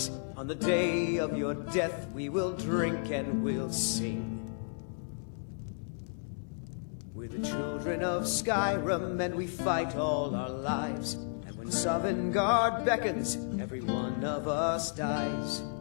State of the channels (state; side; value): silent; right; digital silence